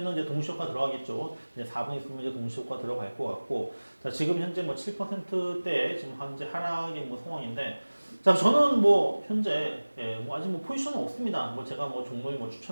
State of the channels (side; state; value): both; inverted; correlation -1.00